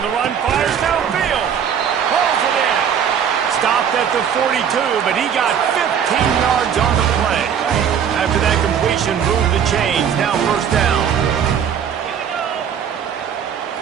the run, fires downfield. Pulls it in. Stopped at the 42, but he got 15 yards on the play. After that completion, moved the chains. Now first down.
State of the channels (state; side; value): quieter; left; 8.1 dB